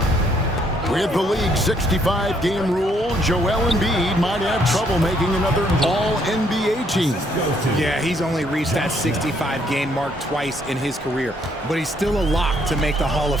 With the league's 65-game rule, Joel Embiid might have trouble making another All-NBA team. Yeah, he's only reached that 65-game mark twice in his career. But he's still a lock to make the Hall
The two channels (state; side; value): normal; both; correlation 0.69